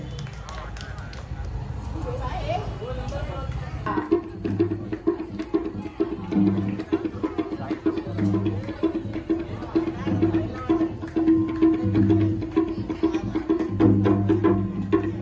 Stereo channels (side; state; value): both; identical; correlation 1.00